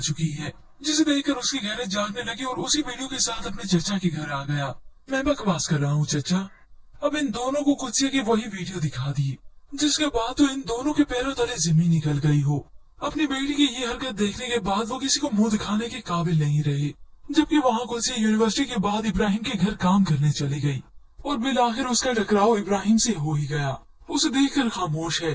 चुकी है, जिसे देखकर उसकी गैरत जागने लगी और उसी वीडियो के साथ अपने चचा के घर आ गया। मैं बकवास कर रहा हूँ चचा। अब इन दोनों को कुत्सिया की वही वीडियो दिखा दी, जिसके बाद तो इन दोनों के पैरों तले जमीन निकल गई हो। अपनी बेटी की ये हरकत देखने के बाद वो किसी को मुंह दिखाने के काबिल नहीं रहे। जबकि वहाँ कुत्सिया यूनिवर्सिटी के बाद इब्राहिम के घर काम करने चली गई और बिल आखिर उसका टकराव इब्राहिम से हो ही गया। उसे देखकर खामोश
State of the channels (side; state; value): both; identical; correlation 1.00